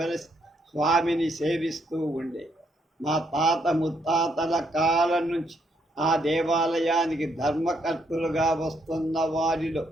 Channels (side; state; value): both; normal; correlation 0.74